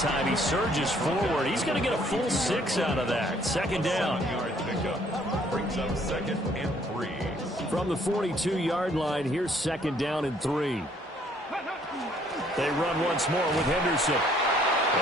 He surges forward. He's going to get a full 6 out of that. Second down. Brings up 2nd and 3. From the 42-yard line, here's 2nd down and 3. They run once more with Henderson.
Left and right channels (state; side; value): normal; both; correlation 0.63